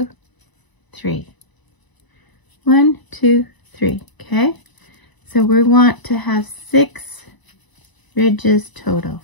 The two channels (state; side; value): late; right; 1.0 ms